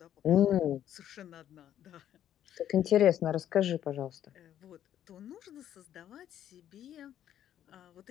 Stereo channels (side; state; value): right; quieter; 10.9 dB